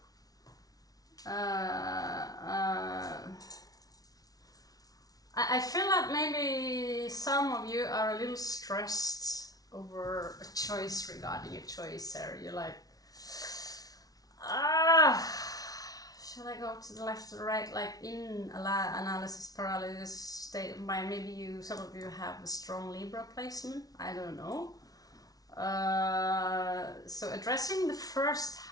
I feel like maybe some of you are a little stressed over a choice regarding a choice there. You're like, should I go to the left or the right? Like in analysis paralysis state of mind. Maybe some of you have a strong Libra placement. I don't know. So addressing the 1st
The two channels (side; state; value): right; late; 0.18 ms